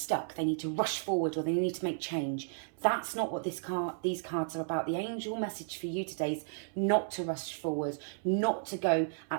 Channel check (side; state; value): left; silent; 55 dB below the other